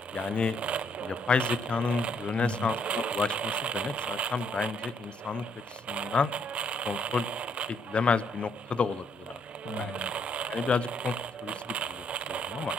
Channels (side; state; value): both; normal; correlation 0.70